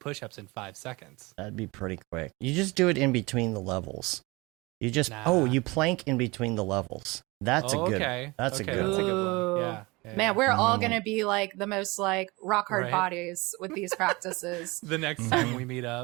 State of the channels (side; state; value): left; quieter; 24.0 dB